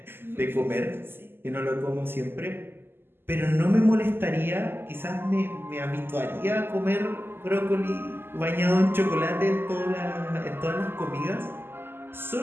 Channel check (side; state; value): left; late; 0.11 ms